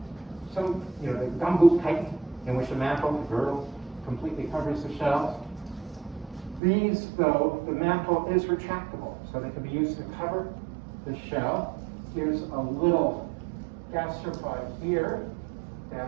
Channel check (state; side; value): drops out; left; at 6.6 s